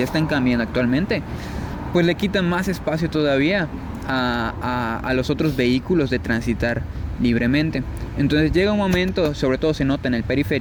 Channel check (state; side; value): identical; both; correlation 1.00